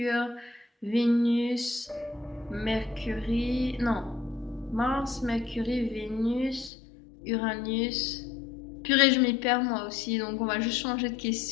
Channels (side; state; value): right; drops out; at 6.7 s